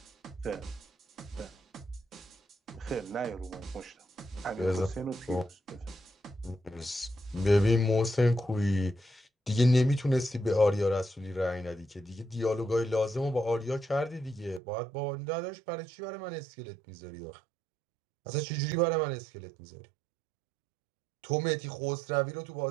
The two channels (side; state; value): left; drops out; at 14.6 s